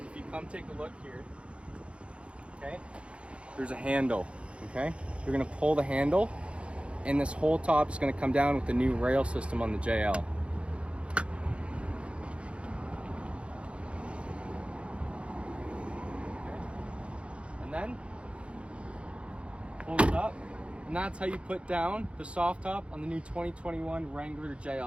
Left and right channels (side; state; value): left; late; 0.059 ms